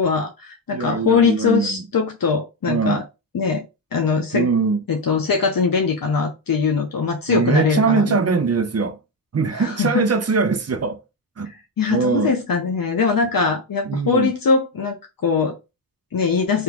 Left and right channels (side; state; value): both; normal; correlation 0.07